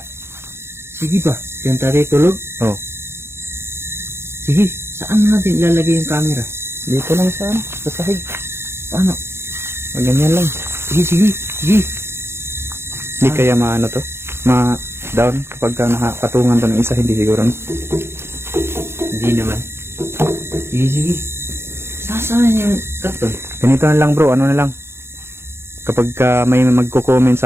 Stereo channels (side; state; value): left; late; 0.12 ms